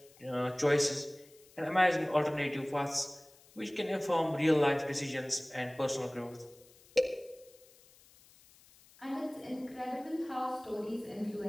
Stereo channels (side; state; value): left; noise; hiss, 26 dB below the sound